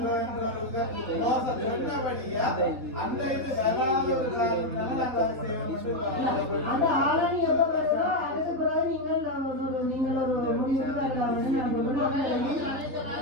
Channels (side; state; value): left; late; 3.5 ms